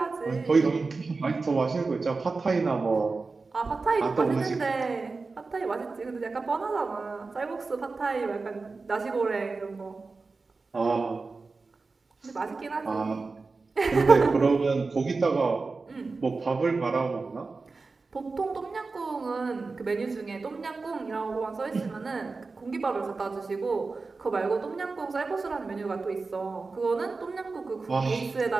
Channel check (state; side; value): quieter; left; 4.0 dB